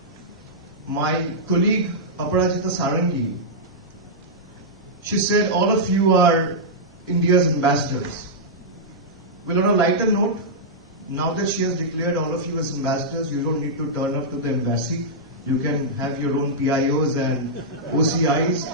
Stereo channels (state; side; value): normal; both; correlation -0.10